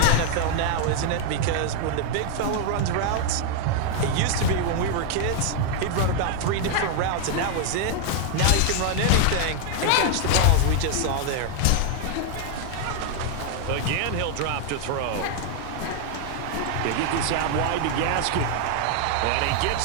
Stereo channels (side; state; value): both; different; correlation 0.00